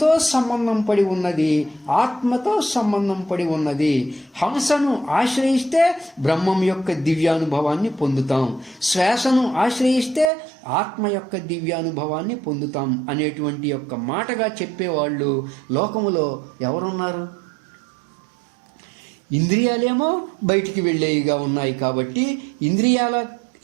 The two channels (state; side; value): drops out; left; at 10.3 s